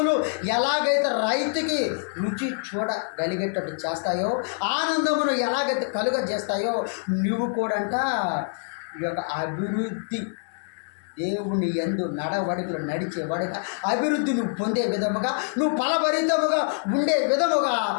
ఎలాగైతే రైతుకి రుచి చూడగలిగేటట్టు చేస్తాయో, ఆనందమును ఎలాగైతే కలుగజేస్తాయో నువ్వు కూడా అంట ఈ యొక్క అభివృద్ధి దేవుని యందు నడవడికలు నడిచేవాడిగా అభివృద్ధి నువ్వు పొందే విధముగా, నువ్వు ఫలభరితముగా ఉండే విధముగా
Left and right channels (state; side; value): silent; right; digital silence